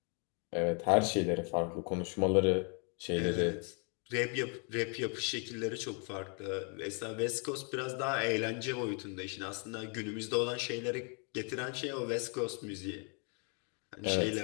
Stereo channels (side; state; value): right; quieter; 38.2 dB